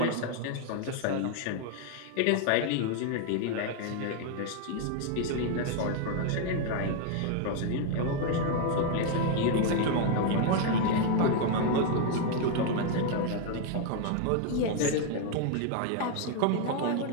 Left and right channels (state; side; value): different; both; correlation 0.00